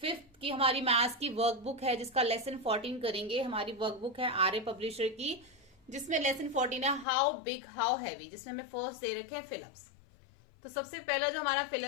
5th की हमारी मैथ्स की वर्कबुक है, जिसका लेसन 14 करेंगे। हमारी वर्कबुक है आर्य पब्लिशर की, जिसमें लेसन 14 है हाउ बिग हाउ हैवी, जिसमें हमें फर्स्ट दे रखे हैं फिलअप्स। तो सबसे पहला जो हमारा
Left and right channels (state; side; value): drops out; right; at 7.1 s